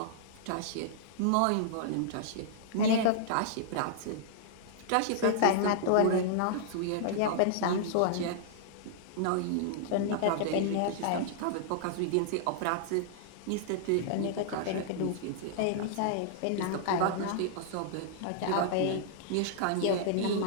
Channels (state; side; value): different; both; correlation -0.01